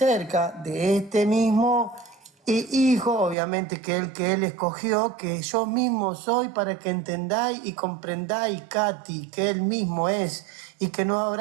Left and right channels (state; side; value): drops out; left; at 3.4 s